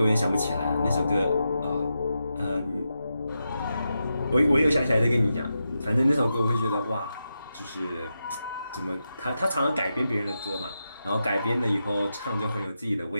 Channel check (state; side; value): inverted; both; correlation -0.88